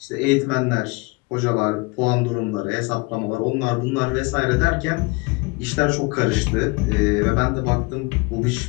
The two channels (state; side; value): quieter; right; 26.9 dB